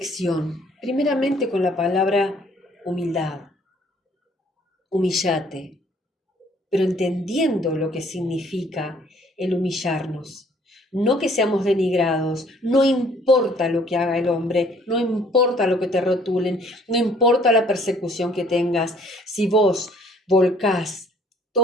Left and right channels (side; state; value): both; normal; correlation 0.60